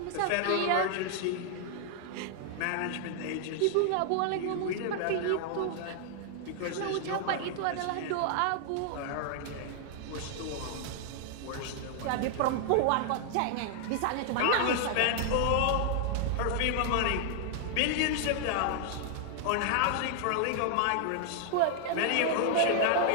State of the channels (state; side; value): different; both; correlation 0.00